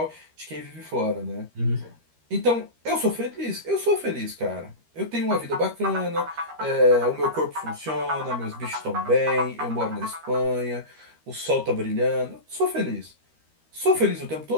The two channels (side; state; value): left; late; 13 ms